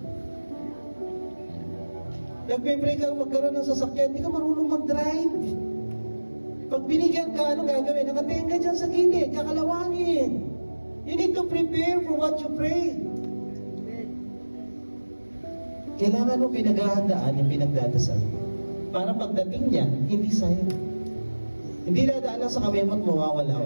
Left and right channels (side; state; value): both; inverted; correlation -1.00